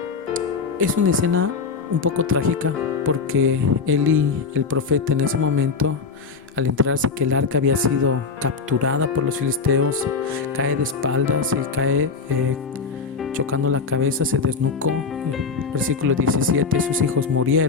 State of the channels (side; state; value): right; quieter; 5.0 dB